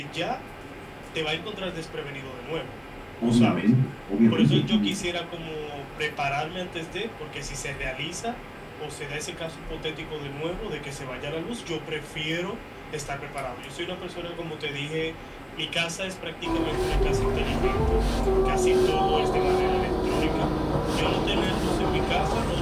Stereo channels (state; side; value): identical; both; correlation 1.00